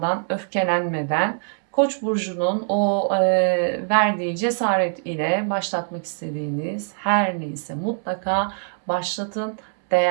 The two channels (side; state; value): left; silent; 63 dB below the other